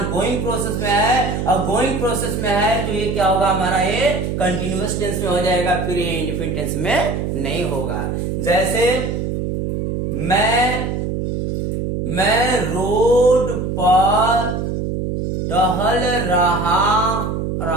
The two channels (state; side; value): noise; right; hum, 2 dB below the sound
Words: प्रोसेस में है, और गोइंग प्रोसेस में है तो ये क्या होगा? हमारा ये कंटिन्यूअस टेंस में हो जाएगा, फिर ये इंडेफिनिट टेंस में नहीं होगा। जैसे मैं रोड पर टहल